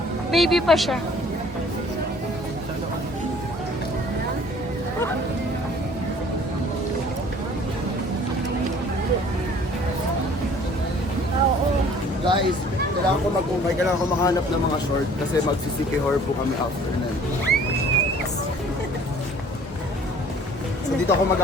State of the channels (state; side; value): normal; both; correlation 0.52